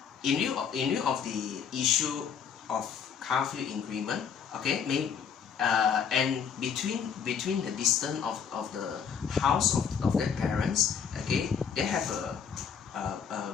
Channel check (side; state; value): right; quieter; 7.2 dB